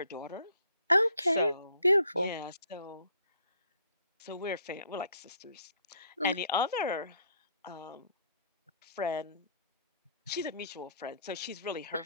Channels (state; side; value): inverted; both; correlation -0.64